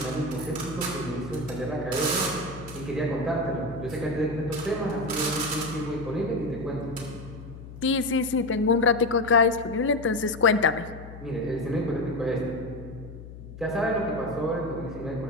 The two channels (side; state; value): left; noise; hum, 14 dB below the sound